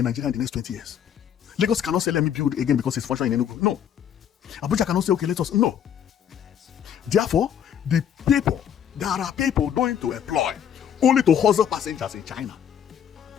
Nigeria in the next 20 years. Lagos cannot say, let me build again because it's functioning in Enugu. No. Abuja cannot say, okay, let us... No. Therefore, There are people going to employ only to hustle passengers in China.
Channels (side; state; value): right; quieter; 9.0 dB